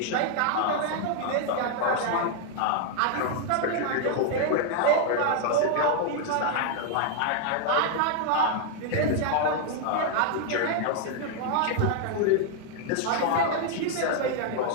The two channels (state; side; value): different; both; correlation 0.00